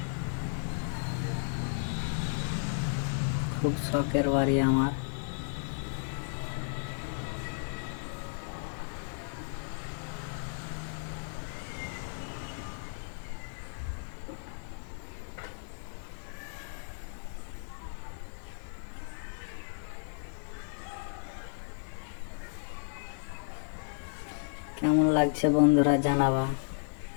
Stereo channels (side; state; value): right; silent; digital silence